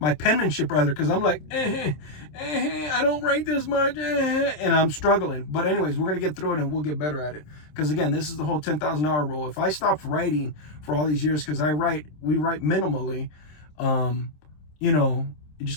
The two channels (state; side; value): late; right; 27 ms